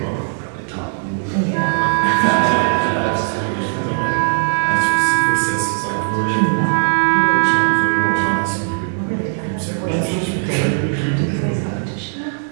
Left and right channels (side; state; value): left; silent; 67 dB below the other